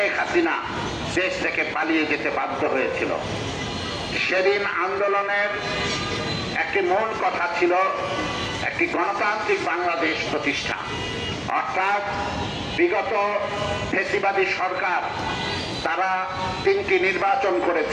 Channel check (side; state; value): both; identical; correlation 1.00